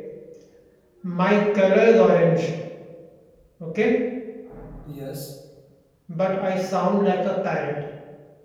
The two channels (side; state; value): both; identical; correlation 1.00